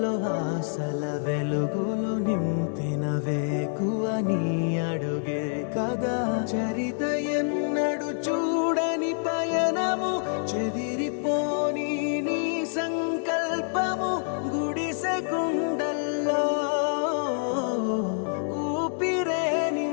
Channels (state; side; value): silent; right; 60 dB below the other